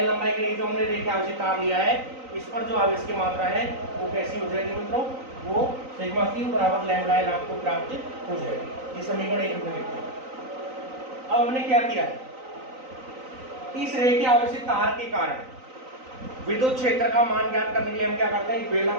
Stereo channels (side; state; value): left; late; 3.9 ms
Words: लंबाई के लिए जो हमने रेखीय आवेशित तार लिया है, इस पर जो आवेश की मात्रा है वो कैसी हो जाएगी मित्रों, वो सिग्मा क्यू बराबर लैम्डा एल आपको प्राप्त हो जाएगी। ये समीकरण 1 में लिखते हैं। अब हमने क्या किया है, इस रेखीय आवेशित तार के कारण विद्युत क्षेत्र का मान ज्ञात करने के लिए हम क्या करते हैं,